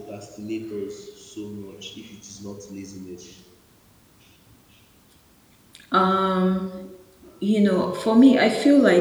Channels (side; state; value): both; identical; correlation 1.00